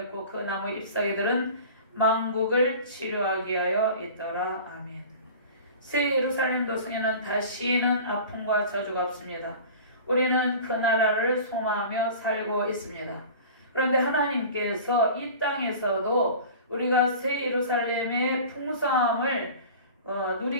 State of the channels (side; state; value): both; inverted; correlation -0.39